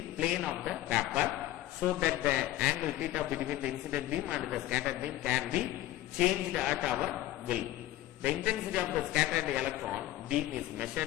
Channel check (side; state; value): right; quieter; 15.0 dB